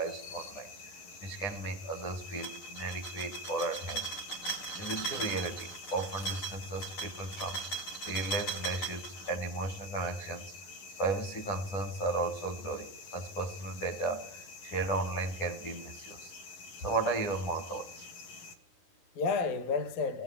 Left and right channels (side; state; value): right; late; 11 ms